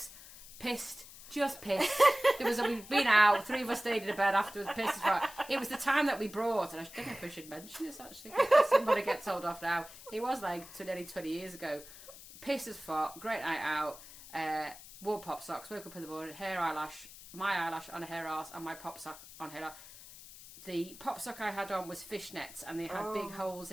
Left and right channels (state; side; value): noise; left; hiss, 17 dB below the sound